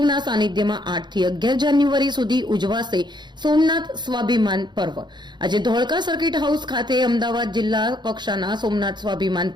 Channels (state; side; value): late; left; 0.21 ms